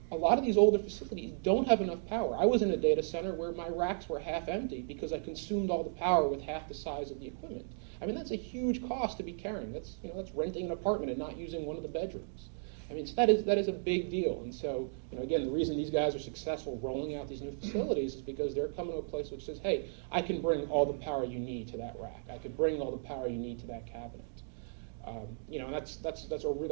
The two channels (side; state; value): left; silent; digital silence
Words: A lot of these older facilities don't have enough power. I was in a data center where my racks were half empty because I consumed all the power with half the size of the equipment. That's a huge cost to be carrying. That's renting an apartment and not using one of the bedrooms. I mean, so that is a big deal. And so, again, the reason these guys are successful rolling out these new facilities is because they're coming to a place which says, hey, I can bring all the power you need to that rack. I can bring all the power you need to that cabinet. And